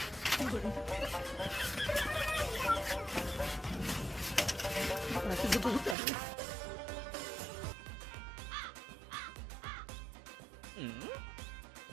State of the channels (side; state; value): left; drops out; at 6.0 s